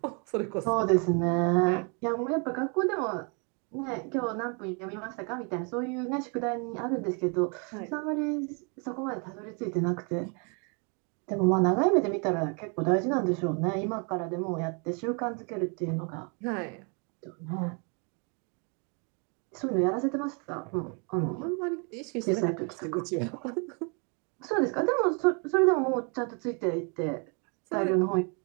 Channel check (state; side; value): quieter; left; 35.9 dB